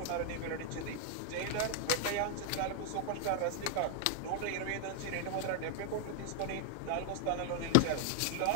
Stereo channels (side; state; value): both; different; correlation 0.00